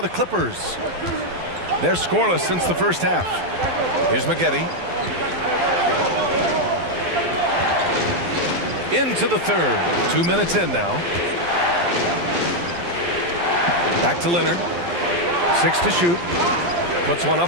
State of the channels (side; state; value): left; late; 12 ms